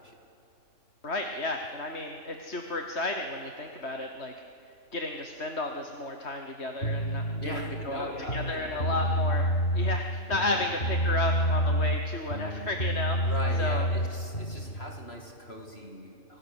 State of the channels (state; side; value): late; right; 3.0 ms